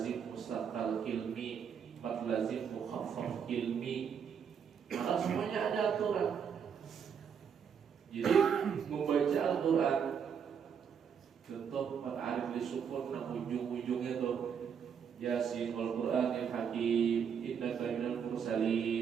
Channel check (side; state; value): left; quieter; 7.3 dB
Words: mustaqal ilmi, mat lazim mukhaffaf ilmi. Maka semuanya ada aturan. Jadi membaca Al-Quran, contoh mat arif lisukun, nah ujung-ujungnya tuh Yasin wal Qur'anil Hakim innaka minal